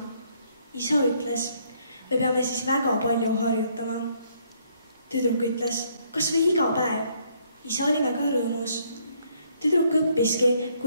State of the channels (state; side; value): inverted; both; correlation -0.68